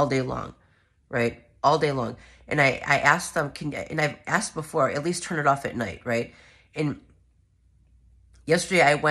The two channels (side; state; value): both; identical; correlation 1.00